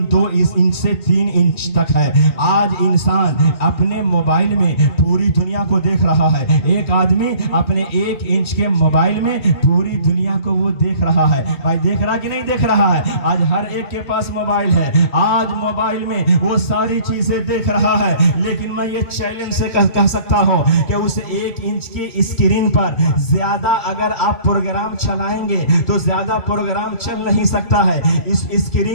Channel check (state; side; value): late; right; 3.2 ms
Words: 2 انچ سے 3 انچ تک ہے. آج انسان اپنے موبائل میں پوری دنیا کو دیکھ رہا ہے. ایک آدمی اپنے 1 انچ کے موبائل میں پوری دنیا کو وہ دیکھ رہا ہے. بھائی دیکھ رہا کہ نہیں دیکھ رہا ہے؟ آج ہر ایک کے پاس موبائل ہے، آج موبائل میں وہ ساری چیزیں دیکھ رہا ہے. لیکن میں یہ چیلنج سے کہہ سکتا ہوں کہ اس 1 انچ کی اسکرین پر زیادہ اگر آپ پروگرام چلائیں گے تو زیادہ پروگرام چل نہیں سکتا ہے. اس